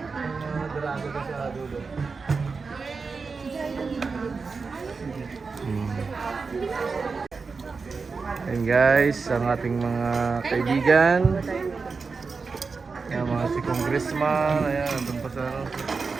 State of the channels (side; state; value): left; quieter; 4.7 dB